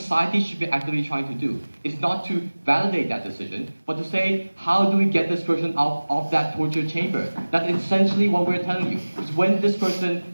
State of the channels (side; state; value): both; inverted; correlation -1.00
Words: should be actively trying to do is not to validate that decision, but to say, how do we get this person out of that torture chamber? That's essentially what we're telling you. Because when this